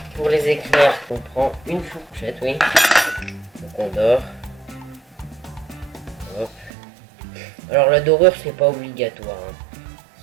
pour les éclairs, on prend une fourchette, oui. Donc, on dore. Hop. Alors la dorure c'est pas obligatoire.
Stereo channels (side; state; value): left; drops out; at 6.7 s